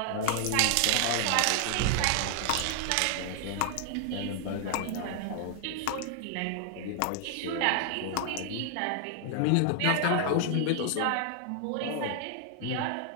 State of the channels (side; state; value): both; different; correlation 0.00